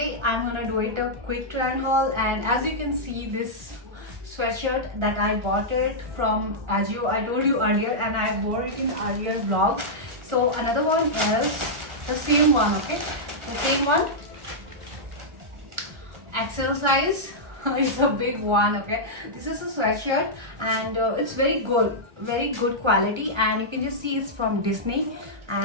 I'm gonna do it a quick try on haul, and as you can see, this sweatshirt that I bought it from Ajio, I told you earlier, and I wore it in earlier vlog. So another one is the same one, okay, the same one, XL size. It's a big one, okay. This is a sweatshirt, and it's very good quality, and you can just see it's from Disney,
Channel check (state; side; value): late; left; 1.4 ms